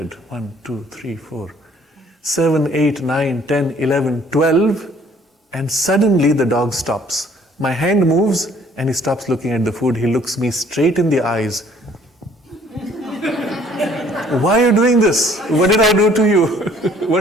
1, 2, 3, 4, 7, 8, 9, 10, 11, 12. And suddenly the dog stops. My hand moves and he stops looking at the food. He looks me straight in the eyes. Why are you doing this? What did I do to you?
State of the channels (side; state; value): both; normal; correlation 0.59